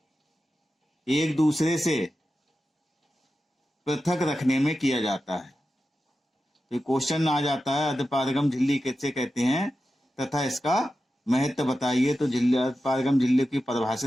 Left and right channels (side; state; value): both; normal; correlation 0.92